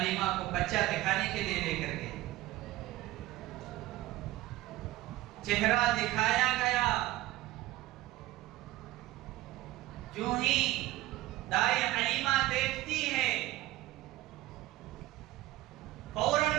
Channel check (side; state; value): left; quieter; 16.8 dB